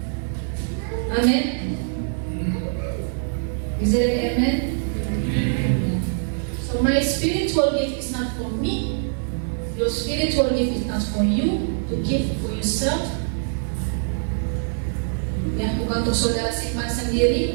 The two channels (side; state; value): left; silent; digital silence